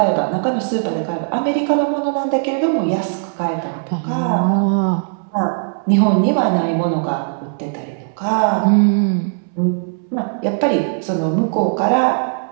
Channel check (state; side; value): silent; left; 67 dB below the other